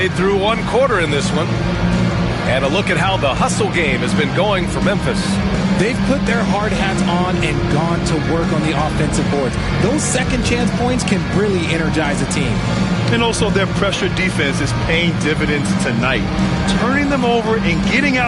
through one quarter in this one. And a look at how the hustle game has been going for Memphis. They've put their hard hats on and gone to work on the offensive boards. Those second chance points can really energize a team. And also their pressure defense is paying dividends tonight, turning them over and getting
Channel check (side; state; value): both; identical; correlation 1.00